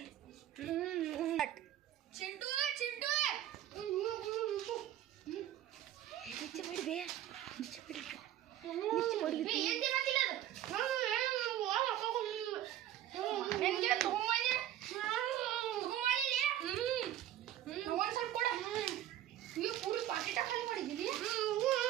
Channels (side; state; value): left; quieter; 12.3 dB